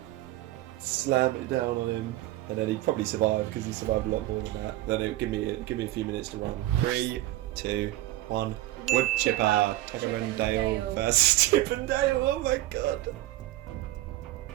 slam it down on him, and then he'd probably survive because he survived a lot more than that. Then it would give me a few minutes to run. 3, 2, 1. Woodchipper, Tucker and Dale versus Chip and Dale. Oh my god.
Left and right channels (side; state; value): left; quieter; 16.3 dB